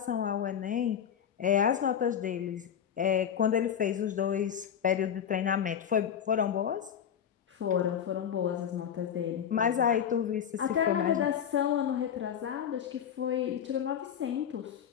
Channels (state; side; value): quieter; right; 8.6 dB